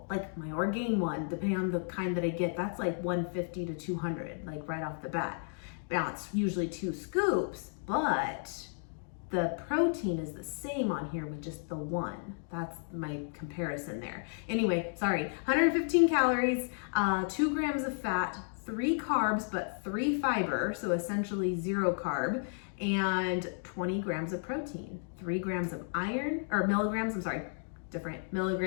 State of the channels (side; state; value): right; silent; 56 dB below the other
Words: like my Orgain one, depending on the kind that I get, that's like 150 to 200, like right off the bat. Now it's usually 2 scoops, but the protein is the same on here with just the 1. That's my comparison there. Anyway, sorry, 115 calories, 2 grams of fat, 3 carbs, but 3 fiber, so essentially 0 carb, and 20 grams of protein, 3 grams of iron, or milligrams, I'm sorry, different